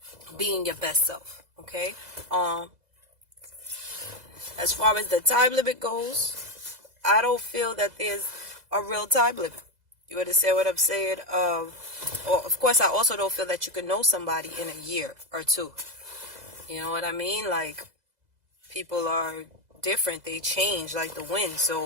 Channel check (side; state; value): left; late; 2.0 ms